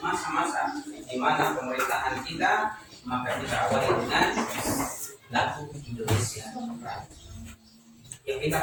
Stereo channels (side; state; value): both; identical; correlation 1.00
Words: masa-masa di mana pemerintahan kita, maka kita awali dengan lagu Indonesia. Yang kita